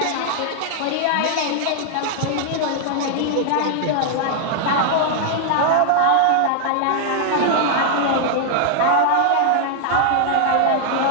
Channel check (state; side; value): different; both; correlation 0.00